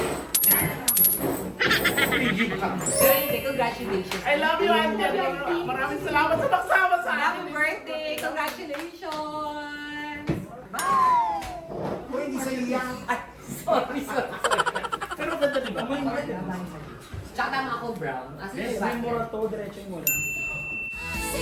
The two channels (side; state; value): both; identical; correlation 1.00